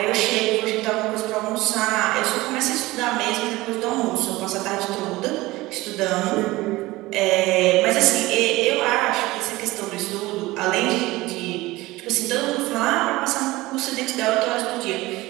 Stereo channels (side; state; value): left; quieter; 19.5 dB